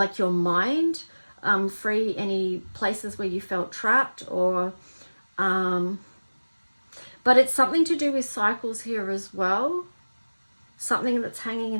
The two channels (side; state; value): both; inverted; correlation -1.00